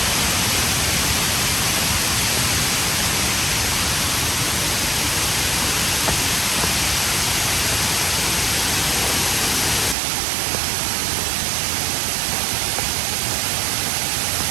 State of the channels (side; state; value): left; drops out; at 10.0 s